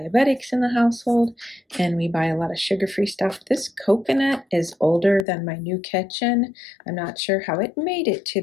in the household and we buy a lot of sugar-free stuff. This coconut is older than my new kitchen. I'm not sure how it made it to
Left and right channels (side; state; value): right; drops out; at 5.2 s